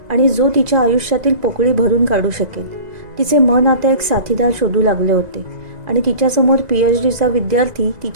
आणि जो तिच्या आयुष्यातील पोकळी भरून काढू शकेल. तिचे मन आता एक साथीदार शोधू लागले होते आणि तिच्यासमोर PhDचा विद्यार्थी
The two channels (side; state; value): left; late; 2.0 ms